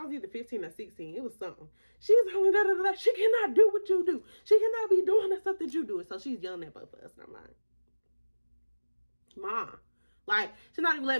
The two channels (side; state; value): both; inverted; correlation -1.00